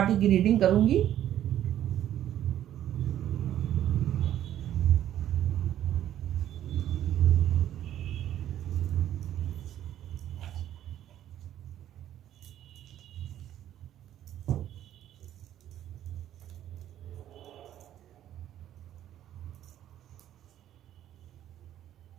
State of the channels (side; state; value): left; quieter; 11.7 dB